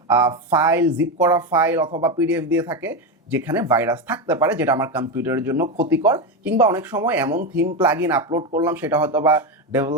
ফাইল, জিপ করা ফাইল অথবা পিডিএফ দিয়ে থাকে যেখানে ভাইরাস থাকতে পারে, যেটা আমার কম্পিউটারের জন্য ক্ষতিকর। কিংবা অনেক সময় এমন থিম প্লাগইন আপলোড করলাম সেটা হয়তো বা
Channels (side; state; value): both; normal; correlation 0.13